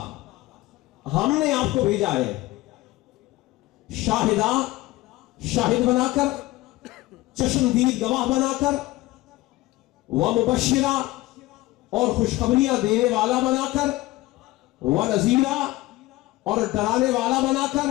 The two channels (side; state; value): right; quieter; 18.5 dB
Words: ہم نے آپ کو بھیجا ہے، شاہدہ، شاہد بنا کر، چشمدید گواہ بنا کر، ومبشرہ، اور خوشخبریاں دینے والا بنا کر، ونذیرہ، اور ڈرانے والا بنا کر،